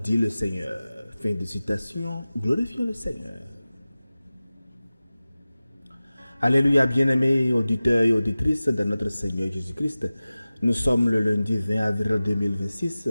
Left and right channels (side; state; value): both; inverted; correlation -0.97